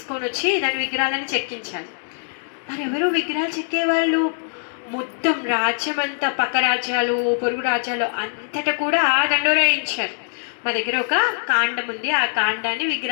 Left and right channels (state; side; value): silent; right; digital silence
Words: వచ్చి దాని విగ్రహాలను చెక్కించాలి. మరి ఎవరు విగ్రహాలు చెక్కేవాళ్ళు? మొత్తం రాజ్యం అంతా, పక్క రాజ్యాలు, పొరుగు రాజ్యాలు అంతటా కూడా దండోరాయించారు. మా దగ్గర ఒక కాండం ఉంది, ఆ కాండాన్ని